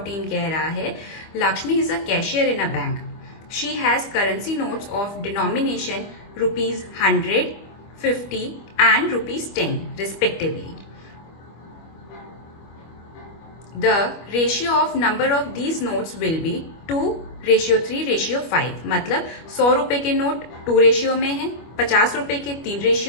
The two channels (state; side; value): late; right; 25 ms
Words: कह रहा है Lakshmi is a cashier in a bank, she has currency notes of denomination ₹100, ₹50 and ₹10 respectively. The ratio of number of these notes will be 2:3:5। मतलब 100 रुपए के नोट 2 रेशियो में है, 50 रुपए के 3